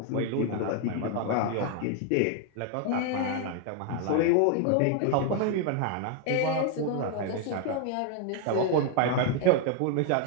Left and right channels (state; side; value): different; both; correlation 0.00